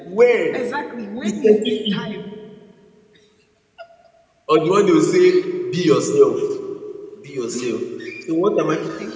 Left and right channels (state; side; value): identical; both; correlation 1.00